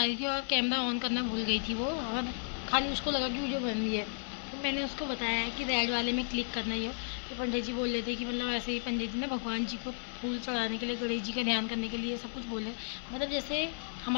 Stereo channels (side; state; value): right; silent; 55 dB below the other